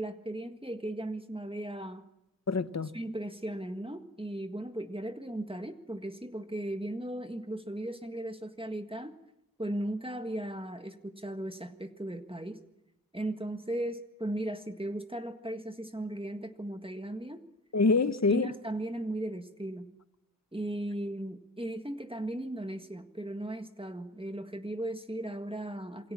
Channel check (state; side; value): normal; both; correlation 0.51